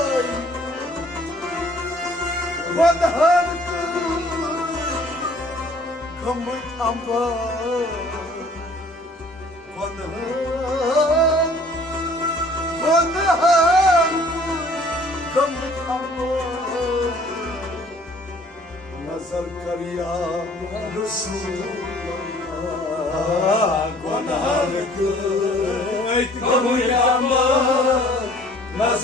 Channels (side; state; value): both; normal; correlation 0.55